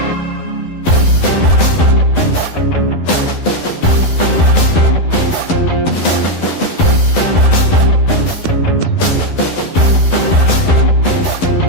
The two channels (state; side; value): late; right; 11 ms